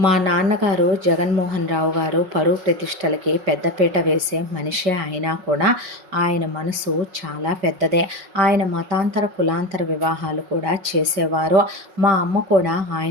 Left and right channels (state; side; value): late; left; 5.4 ms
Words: మా నాన్నగారు జగన్మోహన్ రావు గారు పరువు ప్రతిష్టలకి పెద్దపీట వేసే మనిషే అయినా కూడా ఆయన మనసు చాలా పెద్దదే. ఆయన మతాంతర కులాంతర వివాహాలు కూడా చేసేవారు. మా అమ్మ కూడా